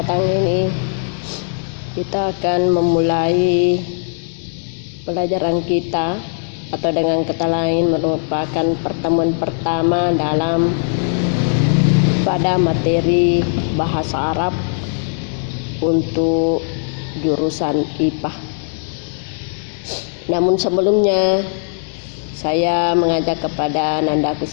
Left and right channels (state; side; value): silent; right; digital silence